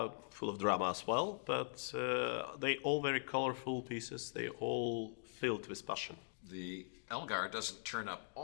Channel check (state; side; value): silent; right; digital silence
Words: of drama as well. But they all very colorful pieces. They all filled with passion. The Elgar doesn't turn up